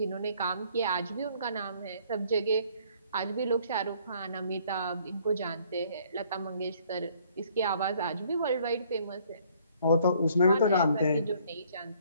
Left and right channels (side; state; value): both; inverted; correlation -0.61